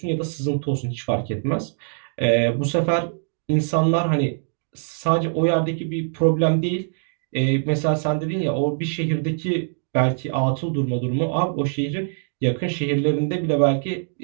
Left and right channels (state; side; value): silent; left; digital silence